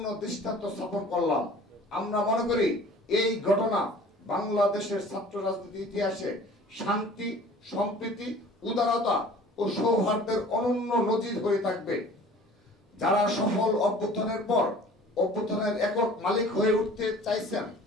দৃষ্টান্ত স্থাপন করলাম। আমরা মনে করি এই ঘটনা বাংলাদেশের ছাত্র রাজনীতির ইতিহাসে শান্তি, সম্প্রীতি, উদারতা ও সৌহার্দ্যের অনন্য নজির হয়ে থাকবে। যারা সফল অভ্যুত্থানের পর অভ্যুত্থানের একক মালিক হয়ে উঠতে চাইছেন,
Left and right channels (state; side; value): normal; both; correlation 0.48